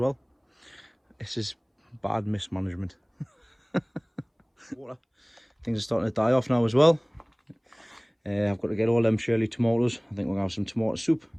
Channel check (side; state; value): both; identical; correlation 1.00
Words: This is bad mismanagement. Water. Things are starting to die off now as well. I've got to get all them Shirley tomatoes. I think we're going to have some tomato soup